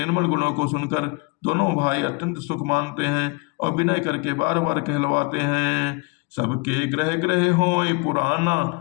गुणों को सुनकर दोनों भाई अत्यंत सुख मानते हैं और विनय करके बार बार कहलवाते हैं। सबके ग्रह ग्रह होय पुराना,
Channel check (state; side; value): quieter; right; 29.5 dB